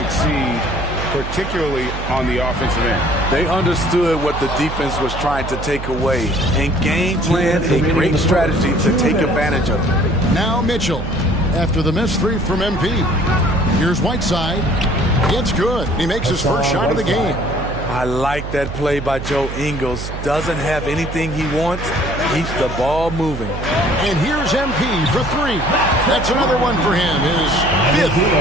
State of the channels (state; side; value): noise; right; hum, 7 dB below the sound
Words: particularly on the offensive end. They understood what the defense was trying to take away and game plan a great strategy to take advantage of it. Now Mitchell, after the missed three from MP. Here's Whiteside. It's good. He makes his first shot of the game. I like that play by Joe Ingles. Doesn't have anything he wants. Keeps the ball moving. And here's MP for three. That's another one for him. His fifth